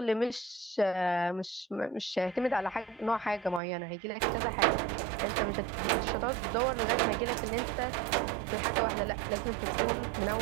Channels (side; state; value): left; drops out; at 3.6 s